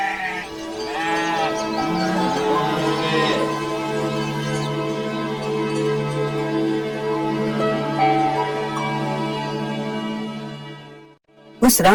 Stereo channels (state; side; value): identical; both; correlation 1.00